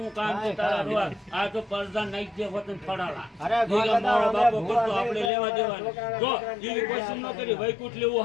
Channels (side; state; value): right; drops out; at 5.3 s